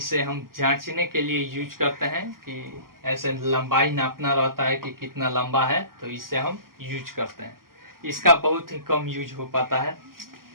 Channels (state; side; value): late; left; 0.92 ms